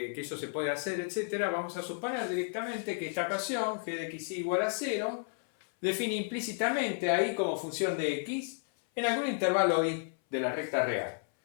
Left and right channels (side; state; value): right; silent; 56 dB below the other